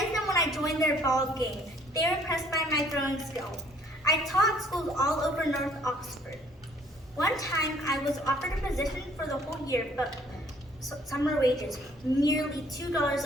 them when I joined their ball game. They were impressed by my throwing skill. I taught schools all over North Oxford. One time, I was offered a position for the whole year, but summer wages, nearly $2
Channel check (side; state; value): both; normal; correlation 0.59